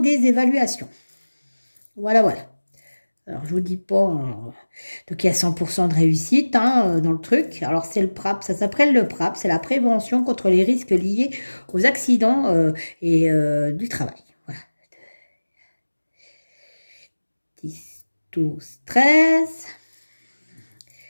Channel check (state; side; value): inverted; both; correlation -1.00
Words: évaluations. Voilà, voilà. Alors, je vous dis pas... donc, il y a 100% de réussite hein, dans le truc. Alors, c'est le PRAP. Ça s'appelle le PRAP. C'est la prévention contre les risques liés aux accidents et du travail. Voilà. 10, 12, 13...